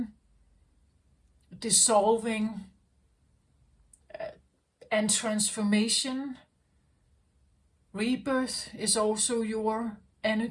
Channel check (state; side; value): identical; both; correlation 1.00